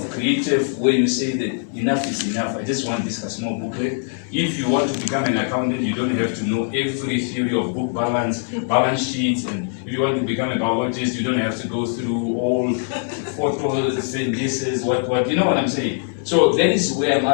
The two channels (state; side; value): silent; right; 65 dB below the other